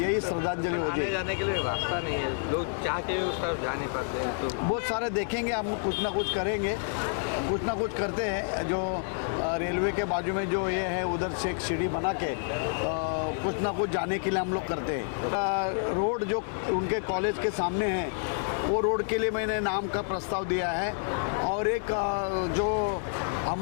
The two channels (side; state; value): right; silent; digital silence